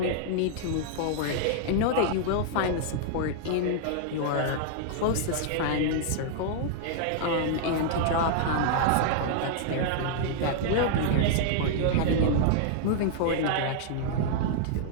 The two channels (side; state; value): both; different; correlation -0.01